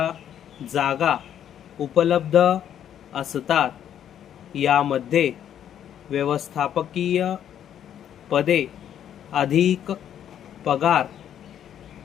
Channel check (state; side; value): quieter; right; 9.9 dB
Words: जागा उपलब्ध असतात. यामध्ये व्यवस्थापकीय पदे अधिक पगार